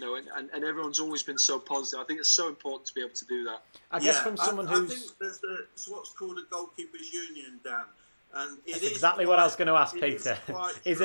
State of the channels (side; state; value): both; inverted; correlation -1.00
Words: everyone's always been so positive. I think it's so important to be able to do that. I guess from someone who's... I think there's what's called a goalkeepers union, Dan. And that's exactly what I was going to ask, Peter. Is